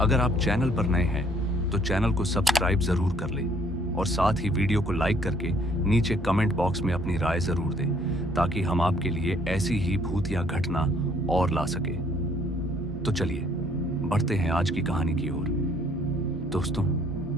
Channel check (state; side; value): normal; both; correlation 0.62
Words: अगर आप चैनल पर नए हैं तो चैनल को सब्सक्राइब जरूर कर लें और साथ ही वीडियो को लाइक करके नीचे कमेंट बॉक्स में अपनी राय जरूर दें ताकि हम आपके लिए ऐसी ही भूत या घटना और ला सके। तो चलिए बढ़ते हैं आज की कहानी की ओर। दोस्तों,